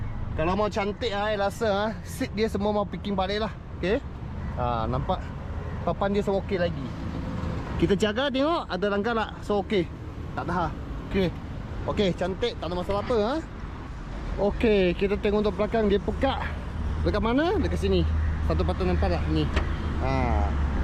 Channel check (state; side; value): identical; both; correlation 1.00